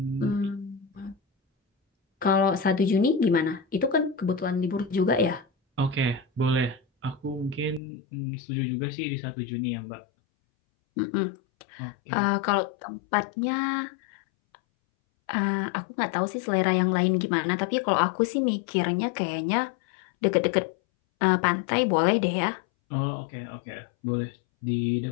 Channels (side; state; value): right; drops out; at 7.8 s